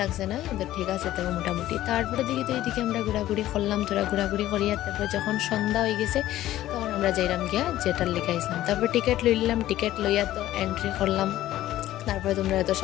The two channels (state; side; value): quieter; right; 14.2 dB